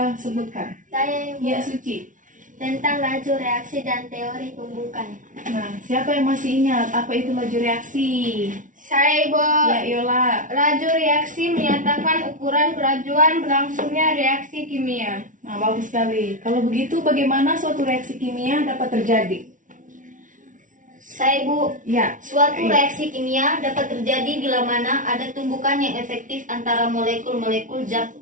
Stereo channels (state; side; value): late; left; 0.38 ms